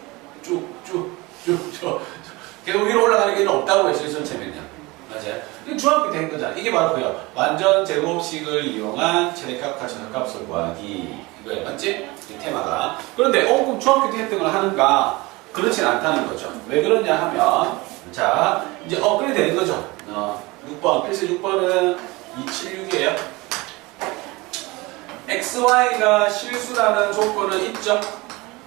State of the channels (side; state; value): left; quieter; 23.0 dB